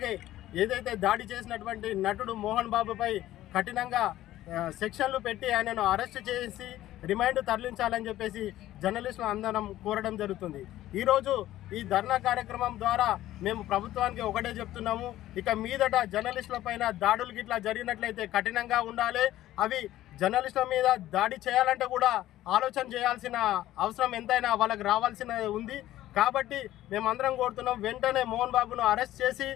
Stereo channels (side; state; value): right; quieter; 14.3 dB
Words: ఏదైతే దాడి చేసినటువంటి నటుడు మోహన్ బాబుపై కఠినంగా సెక్షన్లు పెట్టి ఆయనను అరెస్ట్ చేసి రిమాండ్ తరలించాలని చెప్పేసి జర్నలిస్టులు అందరం కోరడం జరుగుతుంది. ఈరోజు ఈ ధర్నా కార్యక్రమం ద్వారా మేము ప్రభుత్వానికి ఒకటే చెప్తున్నాము, ఇక మీదట జర్నలిస్టుల పైన దాడులు గిట్లా జరిగినట్లయితే కఠినంగా ఉండాలి. అవి జర్నలిస్టుల మీద దాడి చేయాలంటే కూడా ఆలోచన చేయాల్సిన అవసరం ఎంతైనా వాళ్ళకి రావాల్సిన ఉంది. కాబట్టి మేమందరం కోరుతున్నాం, వెంటనే మోహన్ బాబును అరెస్ట్ చేసి